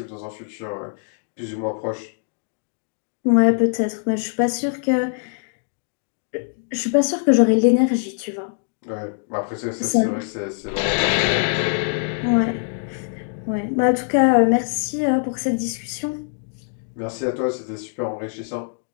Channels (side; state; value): right; silent; digital silence